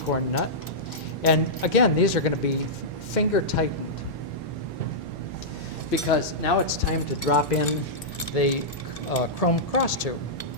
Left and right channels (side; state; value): both; normal; correlation -0.12